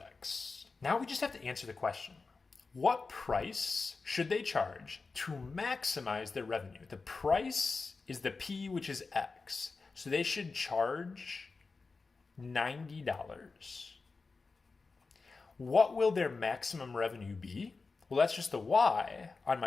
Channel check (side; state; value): right; quieter; 4.2 dB